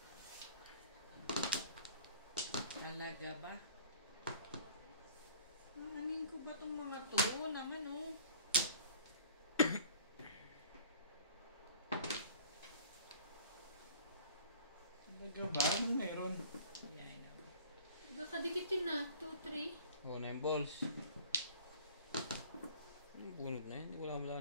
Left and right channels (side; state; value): both; inverted; correlation -0.49